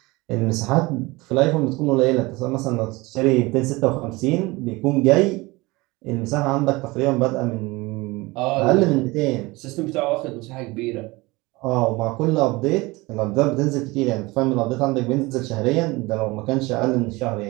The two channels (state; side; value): quieter; left; 22.6 dB